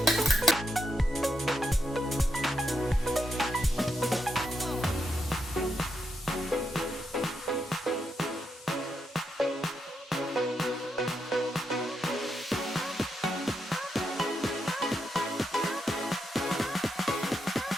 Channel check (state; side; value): normal; both; correlation 0.82